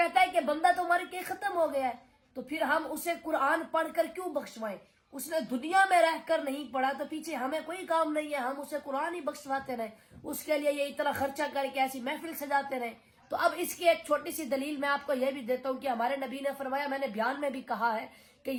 ہے کہ بندہ تو مر کے ختم ہو گیا ہے, تو پھر ہم اسے قرآن پڑھ کر کیوں بخشوائیں؟ اس نے دنیا میں رہ کر نہیں پڑھا تو پیچھے ہمیں کوئی کام نہیں ہے, ہم اسے قرآن ہی بخشواتے رہیں, اس کے لیے یہ اتنا خرچہ کر کے ایسی محفل سجاتے رہیں. تو اب اس کی ایک چھوٹی سی دلیل میں آپ کو یہ بھی دیتا ہوں کہ ہمارے نبی نے فرمایا, میں نے بیان میں بھی کہا ہے کہ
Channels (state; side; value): identical; both; correlation 1.00